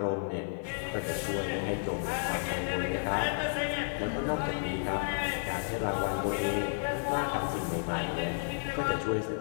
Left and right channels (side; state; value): right; silent; digital silence